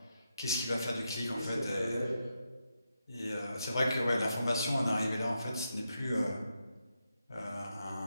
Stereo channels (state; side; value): inverted; both; correlation -0.85